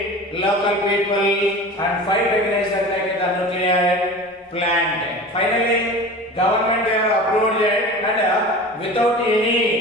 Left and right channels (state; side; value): normal; both; correlation 0.35